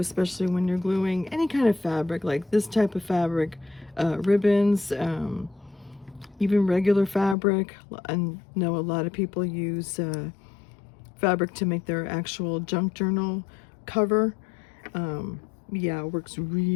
when you're gluing any kind of fabric, like this type of fabric, ribbons, even regular fabric. I know a lot of people use fabric to make their actual junk journal cover. Yeah, it works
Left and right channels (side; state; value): right; drops out; at 7.4 s